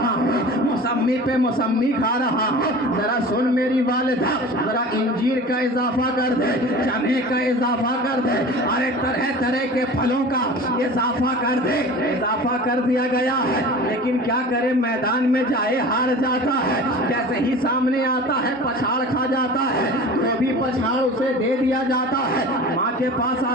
हूँ, मौसम्मी पे मौसम्मी खा रहा हूँ। जरा सुन मेरी वालिदा, जरा इंजीर का इजाफा कर दे, चने का इजाफा कर दे, अरे तरह तरह के फलों का इजाफा कर दे। इजाफा कर दिया गया है, लेकिन क्या करे, मैदान में जाए हार जाता है। जैसे ही सामने आता है पछाड़ खा जाता है, तो भी पछाड़ उसे दे दिया जाता है। माँ के पास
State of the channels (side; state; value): both; normal; correlation 0.38